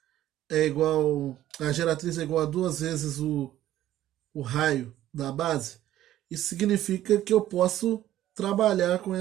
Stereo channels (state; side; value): quieter; left; 13.2 dB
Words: é igual, a geratriz é igual a duas vezes o raio da base? Isso significa que eu posso trabalhar com